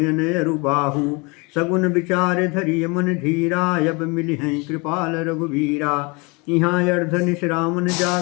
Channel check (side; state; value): right; quieter; 28.4 dB